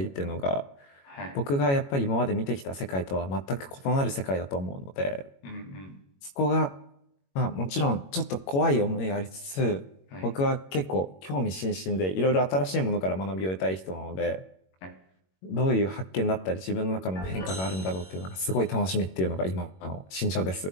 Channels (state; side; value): late; right; 21 ms